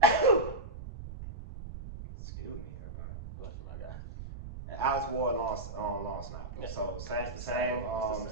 Excuse me, everybody. What's my guy? And Alex Ward long snapper. Yeah. So It's same the same.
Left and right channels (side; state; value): right; noise; rumble, 10 dB below the sound